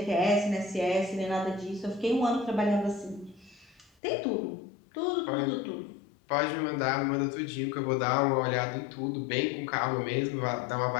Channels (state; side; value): drops out; right; at 3.9 s